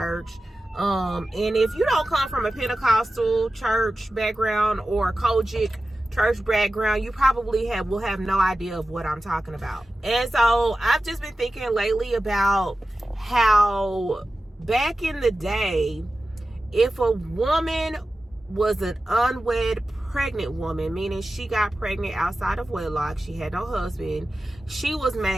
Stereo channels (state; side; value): normal; both; correlation 0.94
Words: And if you don't come from a Pentecostal church background or a Kojic church background, you probably will have no idea of what I'm talking about. And so I've just been thinking lately about how back in the day, if a woman was an unwed pregnant woman, meaning she got pregnant outside of wedlock, she had no husband, she was